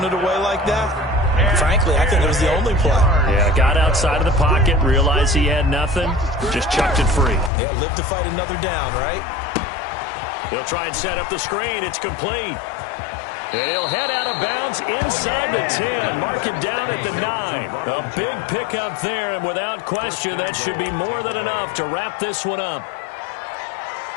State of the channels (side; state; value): right; drops out; at 7.5 s